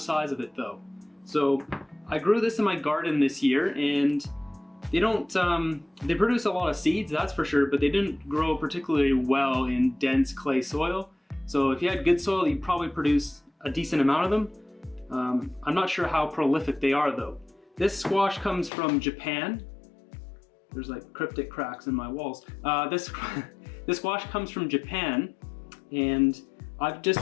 of it though. So I grew this in my garden this year, and they produce a lot of seeds, that's for sure, but they didn't grow particularly well in dense clay soil. So if you had good soil, you'd probably produce a decent amount of them. I'm not sure how prolific they are though. This squash comes from Japan. There's like cryptic cracks in my walls. This squash comes from Japan, and I've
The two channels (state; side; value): drops out; right; at 18.7 s